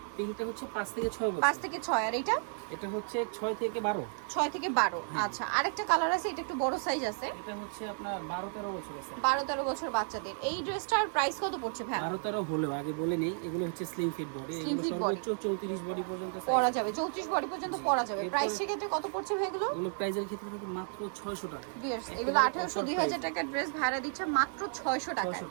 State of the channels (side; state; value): left; silent; 56 dB below the other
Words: পিঙ্কটা হচ্ছে 5 থেকে 6 বছর। 5 থেকে 6। আর এটা হচ্ছে 6 থেকে 12। 6 থেকে 12। আচ্ছা, আরেকটা কালার আছে, এটা একটু বড় সাইজ আছে। এটা হচ্ছে আপনার 12-13 বছর আছে। 12-13 বছর বাচ্চাদের। এই ড্রেসটার প্রাইস কত পড়ছে ভাই? 12-13 হলেও আগে বলে নেই, এগুলো হচ্ছে স্লিম ফিট বডি। এগুলো সর্বোচ্চ 34 বডি পর্যন্ত পরা যাবে, 34 বডি পর্যন্ত পরা যাবে। প্রাইস ক্ষেত্রে কত পড়ছে ভাই এগুলো? এগুলো প্রাইসের ক্ষেত্রে থাকে মাত্র 600 টাকা। এগুলো 1800-2000 টাকার ড্রেস ভাড়া দিচ্ছে মাত্র 600 টাকা।